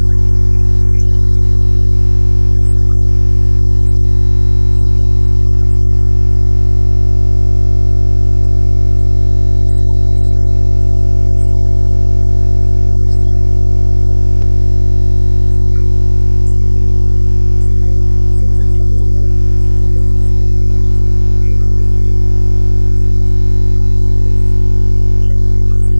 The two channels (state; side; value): inverted; both; correlation -1.00